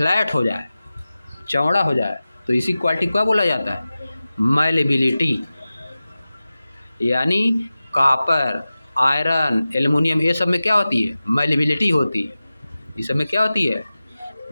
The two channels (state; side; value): inverted; both; correlation -0.95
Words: हो जाए, चौड़ा हो जाए, तो इसी क्वालिटी को क्या बोला जाता है, मैलेबिलिटी। यानी कॉपर, आयरन, एल्युमिनियम, ये सब में क्या होती है, मैलेबिलिटी होती है। इस सब में क्या होती है,